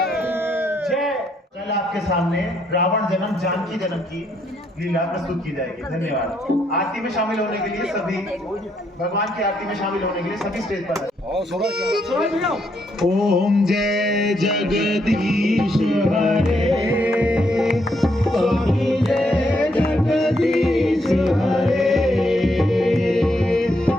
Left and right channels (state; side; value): normal; both; correlation 0.75